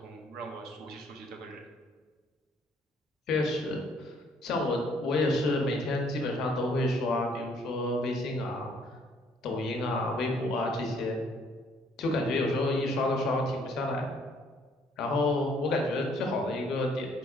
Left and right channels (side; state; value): both; normal; correlation 0.64